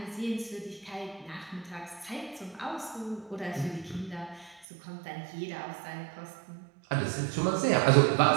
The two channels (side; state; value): left; drops out; at 4.7 s